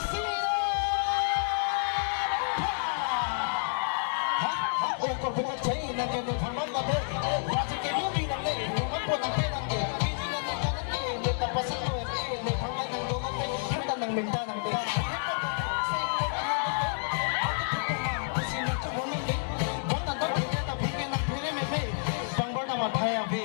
Oh, computer chain, nandiyan yung format na din. Dati kinumi ng day, naman po ng pinang day. Hindi na nila day, may tapasok ko, may pangin ng dolot day. Hindi ng minta ng day. Pangbar naman tayo,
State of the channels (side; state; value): right; silent; digital silence